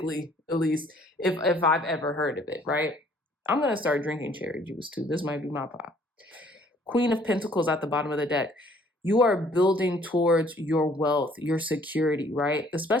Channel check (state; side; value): normal; both; correlation 0.59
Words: at least, if I've ever heard of it, right? I'm going to start drinking cherry juice too. This might be my pop. Queen of Pentacles at the bottom of the deck. You are building towards your wealth, your security, right?